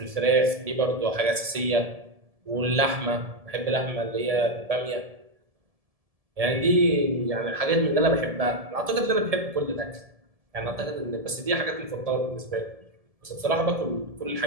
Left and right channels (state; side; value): late; left; 1.7 ms